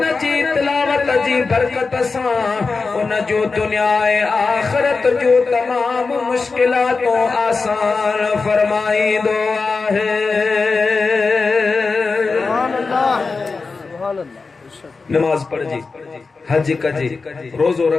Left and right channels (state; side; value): quieter; right; 4.3 dB